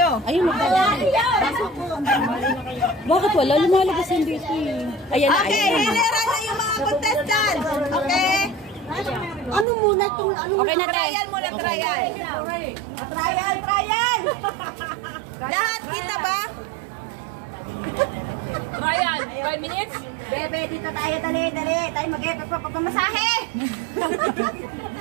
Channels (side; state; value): left; drops out; at 9.7 s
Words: Ayun, bakit wala? Lumalabas yung dito eh. Ayan na, Okay, ayan na. hilera na yung mga contestants. Okay? Ano muna itong, ano Okay na, tayo. Trial muna, trial. Trial. Lahat kita ba? Trial, 5 minutes? Bebe, dito tayo, dali. Tayo mag-pamasahe.